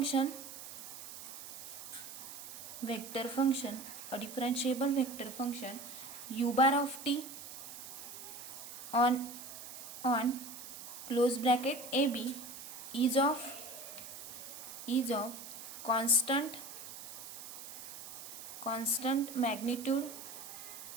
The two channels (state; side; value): noise; right; hiss, 11 dB below the sound